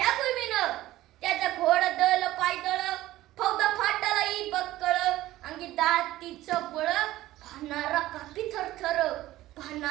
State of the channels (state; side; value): quieter; left; 15.7 dB